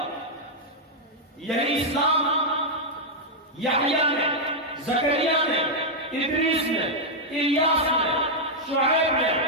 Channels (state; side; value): normal; both; correlation -0.03